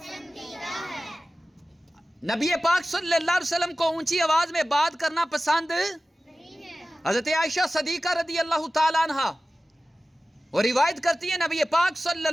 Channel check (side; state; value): both; normal; correlation 0.96